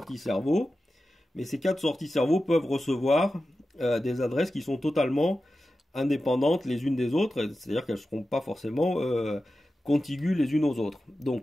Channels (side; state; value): both; normal; correlation 0.93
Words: cerveau, mais ces 4 sorties cerveau peuvent recevoir des adresses qui sont totalement indépendantes les unes des autres, c'est-à-dire qu'elles ne seront pas forcément contiguës les unes aux autres.